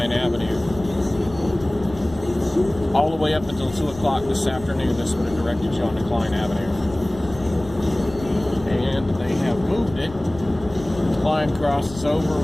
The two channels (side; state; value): left; noise; rumble, 16 dB below the sound